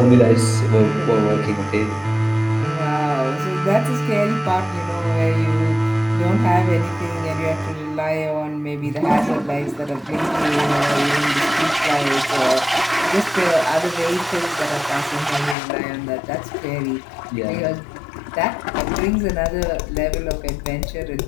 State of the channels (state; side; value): drops out; right; at 15.6 s